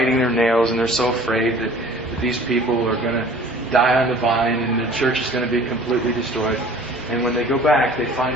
their nails, and they're so afraid that these people are going to die on the vine and the church is going to be completely destroyed. And when they go back, they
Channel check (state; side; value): normal; both; correlation 0.48